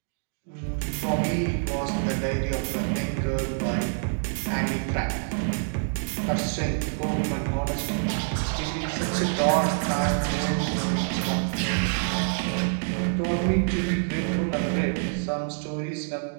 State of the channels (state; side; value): silent; left; digital silence